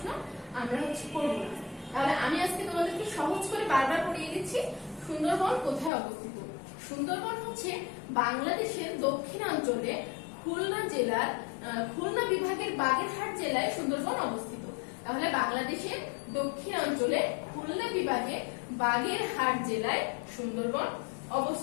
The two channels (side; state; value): right; drops out; at 5.9 s